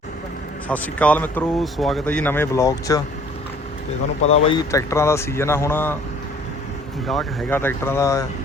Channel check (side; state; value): both; normal; correlation 0.55